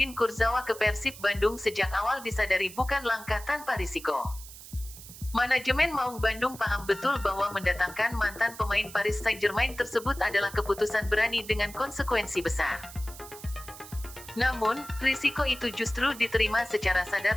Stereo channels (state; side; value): noise; right; hiss, 16 dB below the sound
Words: Kurzawa ke Persib Bandung sejak awal disadari bukan langkah tanpa risiko. Manajemen Maung Bandung paham betul bahwa mendatangkan mantan pemain Paris Saint-Germain tersebut adalah keputusan berani dengan konsekuensi besar. Namun, risiko itu justru diterima secara